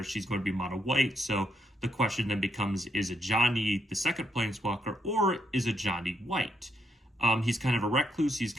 she's going to be mono-white. So the question then becomes, is Ajani the second planeswalker, or is Ajani white? He's kind of a recluse. He's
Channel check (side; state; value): both; normal; correlation 0.77